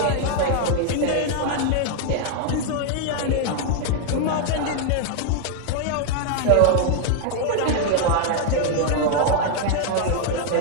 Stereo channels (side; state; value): both; different; correlation 0.00